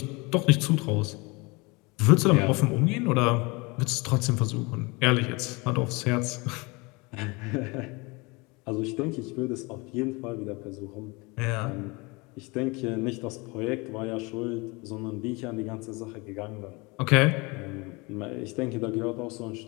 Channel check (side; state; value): right; quieter; 26.4 dB